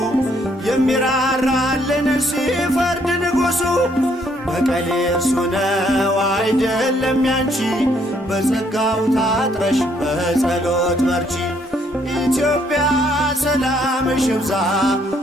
የሚራራልን ሲፈርድ ንጉሡ በቀል እርሱ ነው አይደለም ያንቺ በጸጋው ታጥረሽ በጸሎት በርቺ። ኢትዮጵያ ሰላምሽ ይብዛ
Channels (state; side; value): normal; both; correlation 0.68